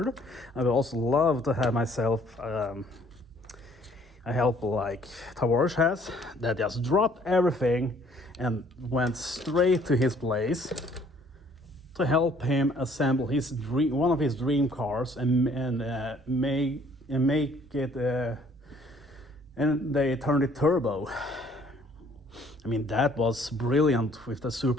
I would also love to have myself a helper like Tavares has, that just dropped everything and went straight to his place to help him assemble one of his dream cars and make it and they turned it turbo. I mean, that was brilliant with the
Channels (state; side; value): normal; both; correlation 0.60